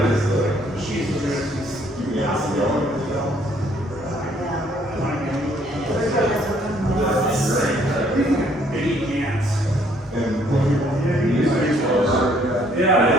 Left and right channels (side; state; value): both; normal; correlation 0.64